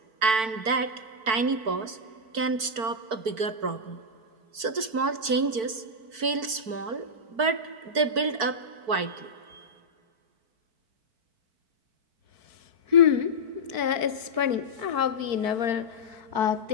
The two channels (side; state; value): left; late; 4.5 ms